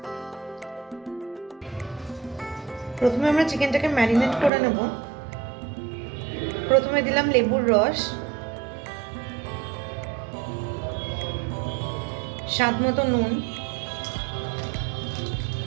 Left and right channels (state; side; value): drops out; left; at 4.5 s